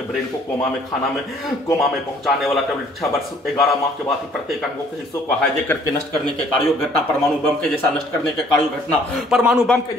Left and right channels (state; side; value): normal; both; correlation 0.59